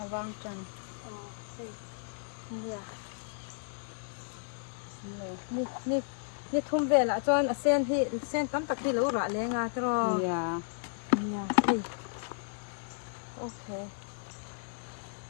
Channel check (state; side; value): silent; right; 56 dB below the other